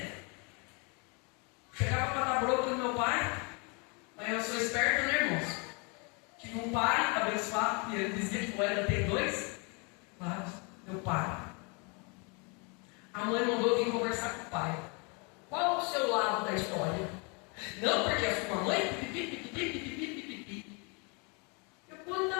Chegava para dar bronca no meu pai. Mas eu sou esperto, né, irmãos? Tive um pai abençoado, e ele dizia que era ter 2 lados. Meu pai. A mãe mandou vir conversar com o pai. Qual o seu lado da história? Não, porque a sua mãe. Eu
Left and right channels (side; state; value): right; quieter; 32.6 dB